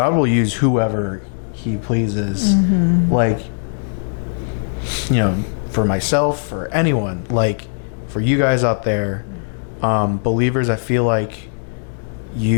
use whoever he pleases. Mm-hmm. Like, for myself, for anyone, like for you guys out there, believers, I feel like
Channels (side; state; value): right; silent; digital silence